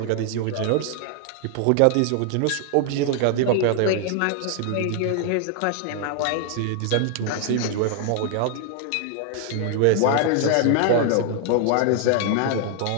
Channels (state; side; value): different; both; correlation 0.00